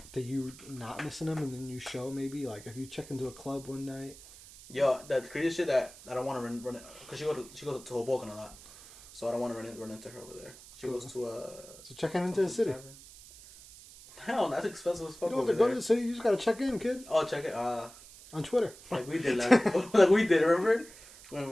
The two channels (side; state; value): right; noise; hiss, 19 dB below the sound